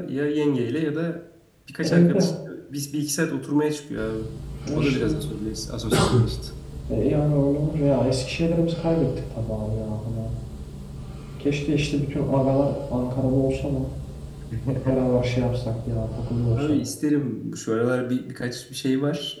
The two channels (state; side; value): identical; both; correlation 1.00